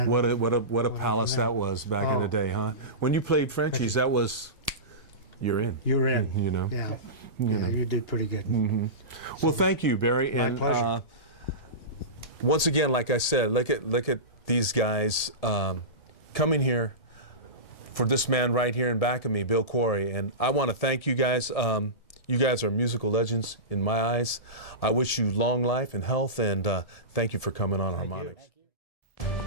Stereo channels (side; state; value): right; late; 1.7 ms